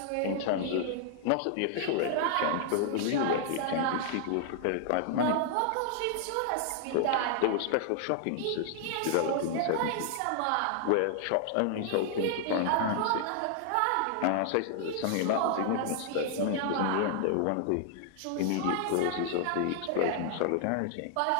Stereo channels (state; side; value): different; both; correlation 0.00